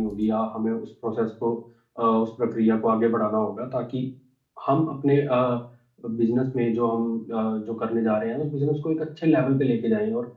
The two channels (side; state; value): both; identical; correlation 1.00